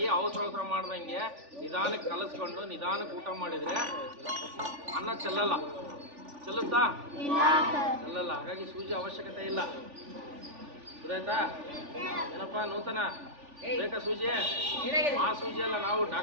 ಅವಸರ ಮಾಡ್ದಂಗೆ ನಿಧಾನಕ್ಕೆ ಕಲಸ್ಕೊಂಡು ನಿಧಾನಕ್ಕೆ ಊಟ ಮಾಡಿದ್ರೆ ಅನ್ನ ಚೆಲ್ಲಲ್ಲ. ಚೆಲ್ಲುತ್ತಾ? ಚೆಲ್ಲಲ್ಲ. ಹಾಗಾಗಿ ಸೂಜಿ ಅವಶ್ಯಕತೆ ಇಲ್ಲ. ಗೊತ್ತಾಯ್ತಾ? ಏನಪ್ಪಾ ನೂತನ ಬೇಕಾ ಸೂಜಿ? ಆ ಸೂಜಿ ಅಲ್ಲ, ನಾವು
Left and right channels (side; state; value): left; late; 3.4 ms